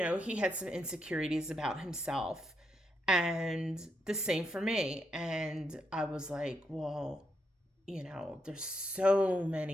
he had some insecurities about himself, and the same for me. And I was like, well, you know, there's so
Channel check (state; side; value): normal; both; correlation 0.80